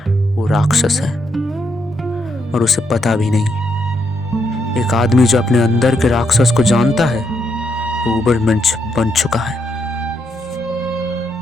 वो राक्षस है और उसे पता भी नहीं। एक आदमी जो अपने अंदर के राक्षस को जानता है, वो उबरमंच बन चुका है।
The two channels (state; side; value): normal; both; correlation 0.78